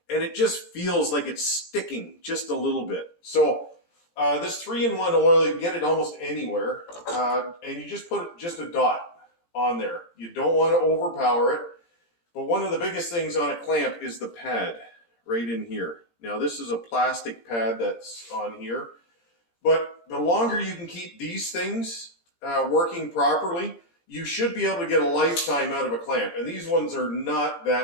And it just feels like it's sticking just a little bit. So this 3-in-1 oil, you can get it almost anywhere, and you just put just a dot on there. You don't want to overpower it, but one of the biggest things on a clamp is the pad right in here. Now this is a plastic pad that's on here, but the longer you can keep these things working properly, you should be able to get a lifetime out of a clamp. And these ones are not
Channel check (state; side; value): late; right; 17 ms